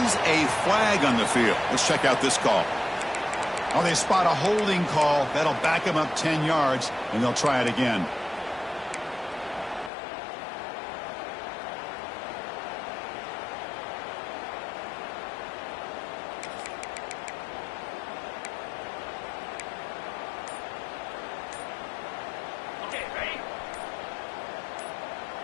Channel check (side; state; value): right; drops out; at 9.9 s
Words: is a flag on the field. Let's check out this call. Oh, they spot a holding call. That'll back him up 10 yards, and they'll try it again.